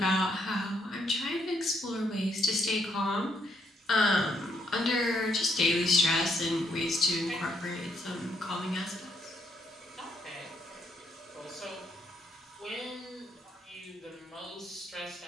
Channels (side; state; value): both; normal; correlation 0.74